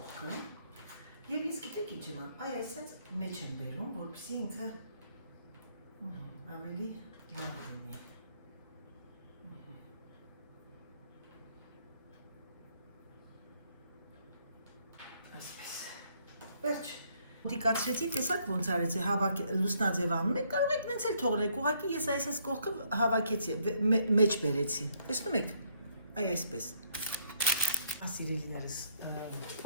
և ինձ գիտեք ինչ եմ անում, այսպես մեջ եմ բերում, որպեսզի ինքը ավելի լավ լինի։ Վերջ, դիկացրեցի, տեսակ ոնց արեցի, լուսնաձև անում եք, կարող եք նենց էլ թողնեք, ուղղակի ես այսպես կողքը հավաքեցի, մեջ բերեցի, տեսնում եք, այսպես, սիրելիներս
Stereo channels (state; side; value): inverted; both; correlation -0.68